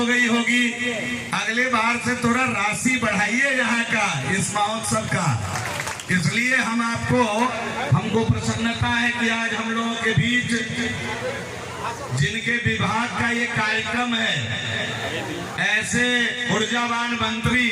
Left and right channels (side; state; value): both; identical; correlation 1.00